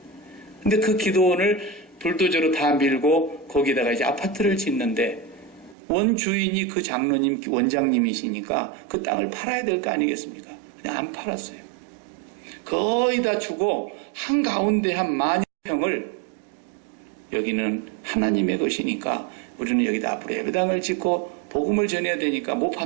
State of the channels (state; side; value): drops out; left; at 5.8 s